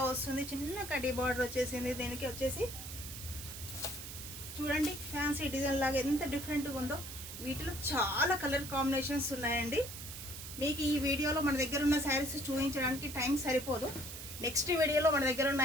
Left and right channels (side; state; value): right; noise; hiss, 10 dB below the sound